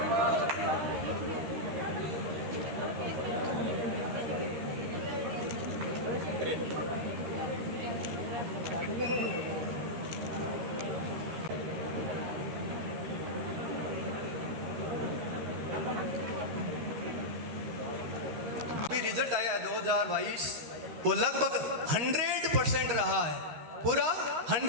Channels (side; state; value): left; late; 13 ms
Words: रिजल्ट आया है 2022, वो लगभग 100% रहा है, पूरा